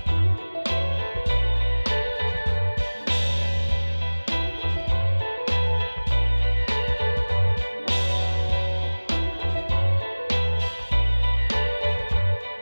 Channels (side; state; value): both; inverted; correlation -1.00